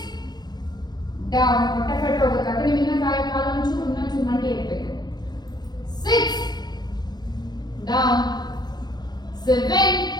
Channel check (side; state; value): right; late; 0.20 ms